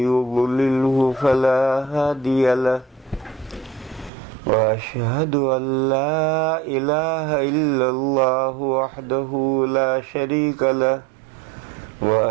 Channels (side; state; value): left; drops out; at 4.1 s